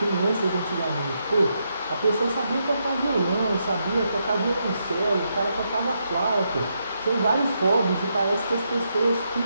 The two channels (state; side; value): inverted; both; correlation -0.81